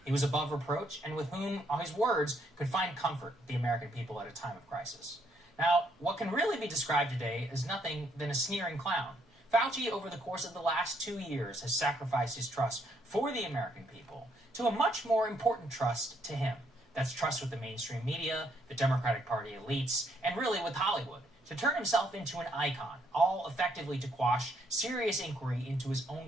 He was above reproach and with whom, on his words, could find comfort the American people at a time of crisis. Now, what can really be described today is nothing than a sneering clown. Fauci, over the course of the last 2 years, has sacrificed his trust for the American people to a much more important trust to him. That's trust with the mainstream media, the Democratic Party elites, and really with Hollywood, to turn himself into an icon, all effectively to quash serious inquiry into his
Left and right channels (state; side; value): normal; both; correlation 0.72